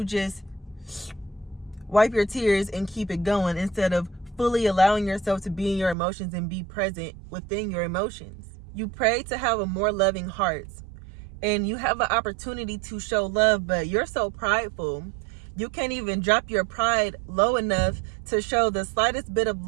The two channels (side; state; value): left; drops out; at 6.0 s